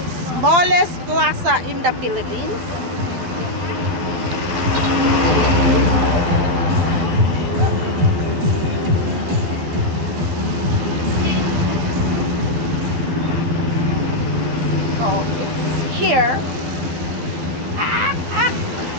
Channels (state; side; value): late; left; 12 ms